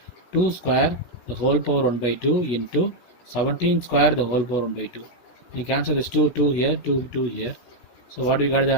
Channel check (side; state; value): right; late; 16 ms